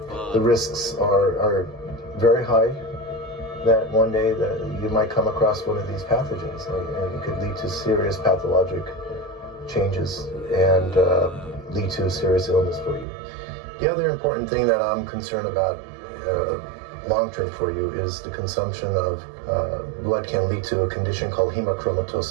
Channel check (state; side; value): drops out; left; at 13.1 s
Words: The risks are very high that one day that you might come across one of these pathogens, and it could lead to serious pathologic changes and lead to a serious illness for you. The other important thing that I'm concerned about long-term for you is the consumption of blood can lead to a condition called